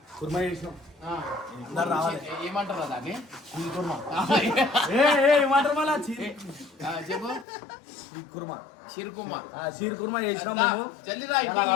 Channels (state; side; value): drops out; right; at 7.5 s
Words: కుర్మా చేసినాం. ఏమంటారా దాన్ని? ఏమంటారు మళ్ళా? చెప్పు. షీర్ కుర్మా చేసినాం మేము. జల్దిరా